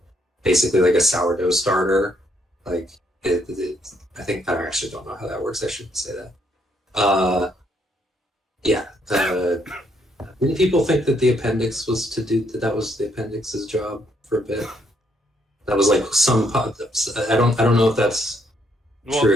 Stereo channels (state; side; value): normal; both; correlation 0.72